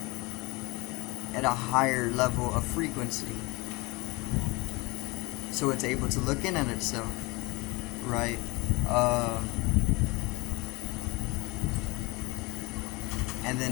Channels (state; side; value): quieter; right; 25.0 dB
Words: at a higher level of frequency. So it's able to look in at itself, right? And